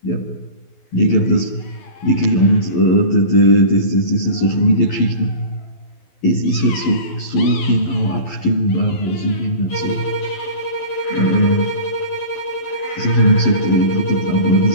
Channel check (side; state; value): right; late; 12 ms